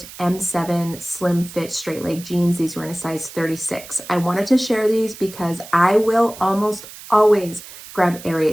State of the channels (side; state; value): right; noise; hiss, 16 dB below the sound